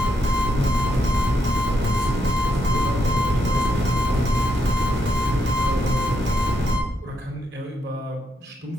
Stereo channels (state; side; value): normal; both; correlation 0.80